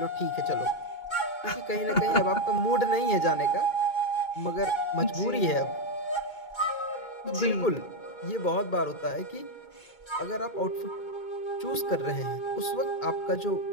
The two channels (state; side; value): late; right; 2.2 ms